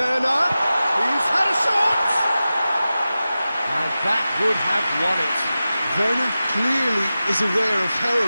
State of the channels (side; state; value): both; inverted; correlation -0.95